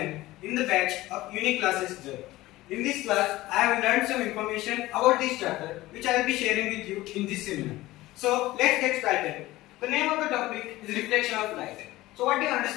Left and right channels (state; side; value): quieter; right; 17.7 dB